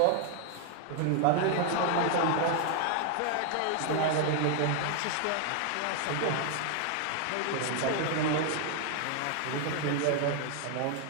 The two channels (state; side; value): different; both; correlation 0.00